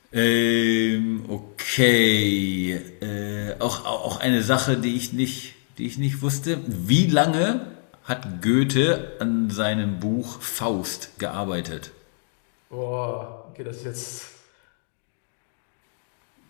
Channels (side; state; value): right; silent; digital silence